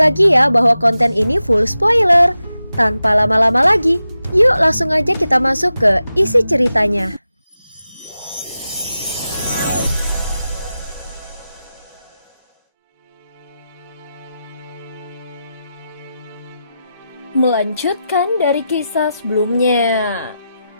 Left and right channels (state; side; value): inverted; both; correlation -0.91